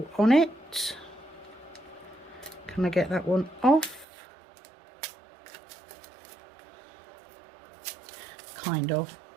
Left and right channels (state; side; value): drops out; left; at 4.0 s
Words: on it. Can I get that one off? Kind of,